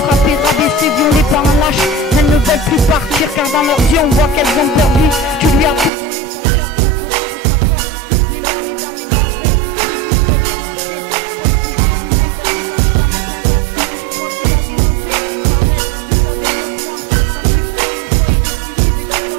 frappé, rabaissé, violé par un lâche. Elles ne veulent plus partir car dans leurs yeux on voit qu'elles ont perdu. Tu lui as tout volé, son cœur, son courage et sa force. Mais moi, mesdames, mesdemoiselles, je vous dis, faut rien lâcher. Faut le pulvériser comme lui quand je t'en mets plein ta tête. Tu crois qu'il a des regrets? M'arrête, vous savez mieux que moi. Quand il le faut une fois, il récidive et c'est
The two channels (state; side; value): drops out; left; at 5.9 s